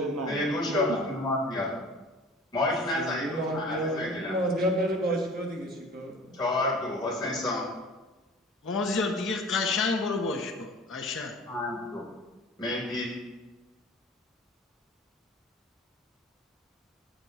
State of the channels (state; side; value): normal; both; correlation 0.43